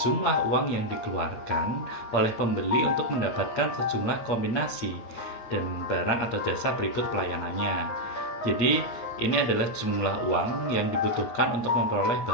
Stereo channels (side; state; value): right; late; 8.4 ms